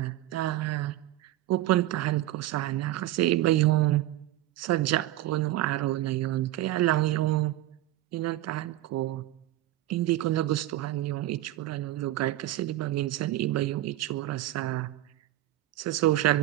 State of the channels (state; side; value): quieter; left; 15.1 dB